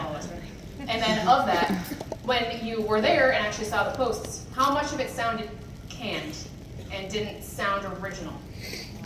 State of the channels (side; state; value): both; identical; correlation 1.00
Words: of us, right? And then of that, when you were there and actually saw the posts, how much of it sounded canned and didn't sound original?